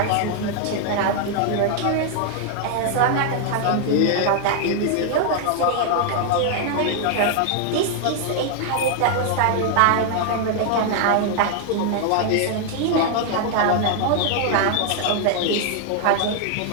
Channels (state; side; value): different; both; correlation 0.00